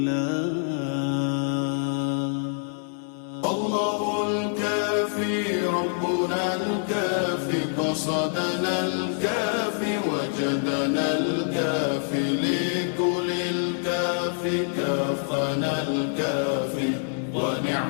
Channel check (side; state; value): right; silent; 61 dB below the other